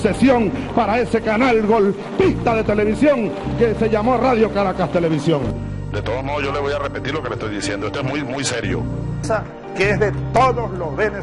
para ese canal golpista de televisión que se llamó Radio Caracas Televisión. De todos modos, yo le voy a repetir lo que le estoy diciendo. Esto es muy serio. Que es de todos los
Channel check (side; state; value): both; identical; correlation 1.00